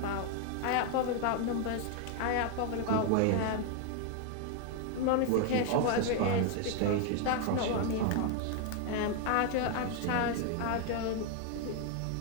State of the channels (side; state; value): both; different; correlation 0.01